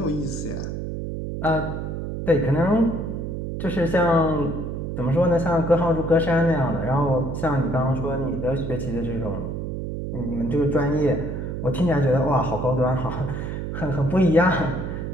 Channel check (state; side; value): noise; right; hum, 5 dB below the sound